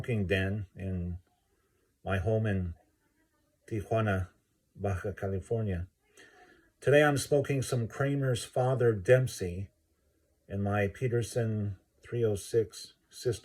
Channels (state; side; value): identical; both; correlation 1.00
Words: den in my home in Tijuana, Baja California. Today I'm smoking some Kramer's Father Dempsey in my Peterson 306